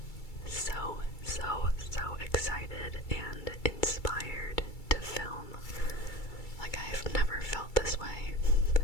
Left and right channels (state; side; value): late; right; 2.3 ms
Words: so excited and inspired to film. Like, I've never felt this way.